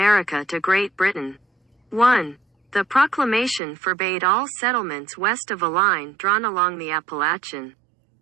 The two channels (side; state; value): left; drops out; at 3.6 s